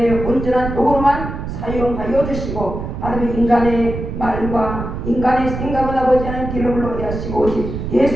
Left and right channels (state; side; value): noise; right; rumble, 6 dB below the sound